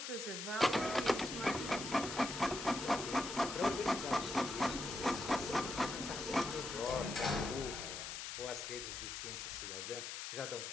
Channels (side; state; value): left; noise; hiss, 6 dB below the sound